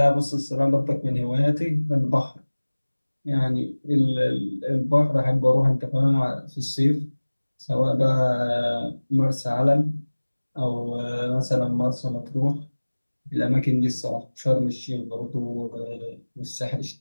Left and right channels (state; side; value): inverted; both; correlation -1.00